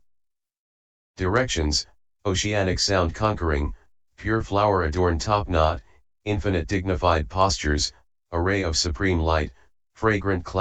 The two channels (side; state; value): both; identical; correlation 1.00